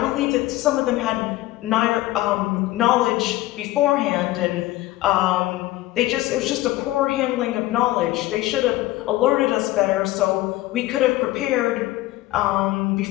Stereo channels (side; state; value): right; quieter; 17.1 dB